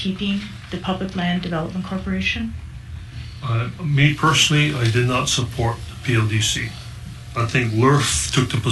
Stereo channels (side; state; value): both; identical; correlation 1.00